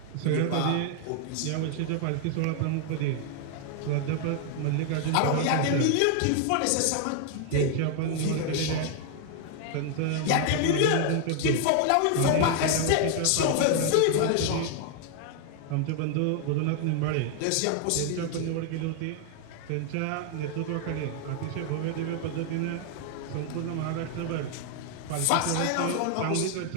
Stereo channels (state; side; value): different; both; correlation 0.00